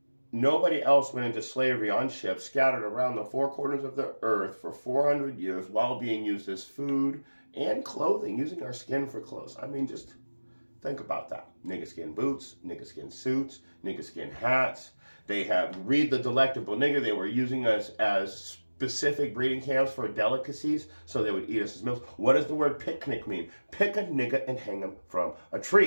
nobody else went into slavery on ships scattered around the four corners of the earth for 400 years while being used as food and clothing, using our skin for clothes. I mean, just think about that. Nigga skin boots, nigga skin suits, nigga skin hats. Read the Delectable Nigger. They were using us as specific breeding camps for delicacies, so they would eat us as meals. What does the word picnic mean? Pick a nigga and hang him from a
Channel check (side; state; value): both; inverted; correlation -1.00